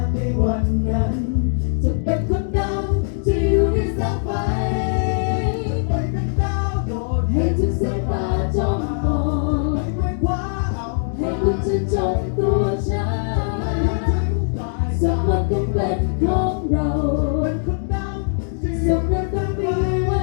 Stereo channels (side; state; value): right; silent; 65 dB below the other